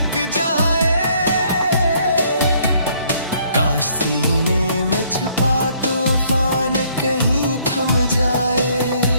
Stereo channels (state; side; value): inverted; both; correlation -0.65